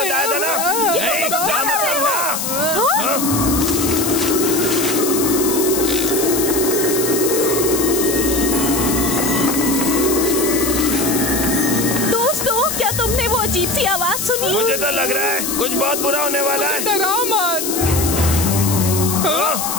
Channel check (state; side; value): noise; left; hiss, 3 dB below the sound